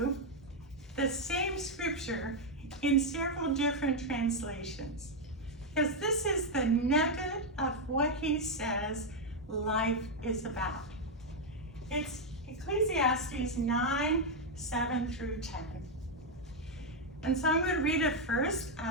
the same scripture in several different translations, because this is the nugget of what he says life is about. It's Ecclesiastes 9, 7 through 10. And so I'm going to read it first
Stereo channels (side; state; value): both; normal; correlation 0.01